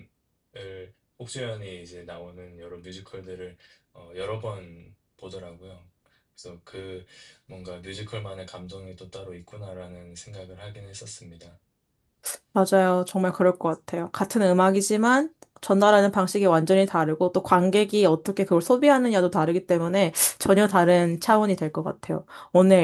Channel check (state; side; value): identical; both; correlation 1.00